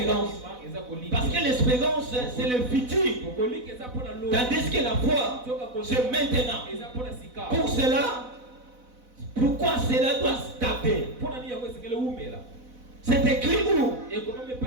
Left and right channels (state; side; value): late; left; 4.0 ms